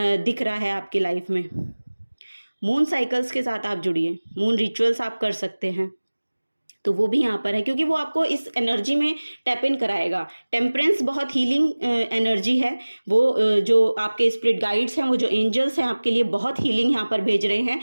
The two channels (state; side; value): inverted; both; correlation -1.00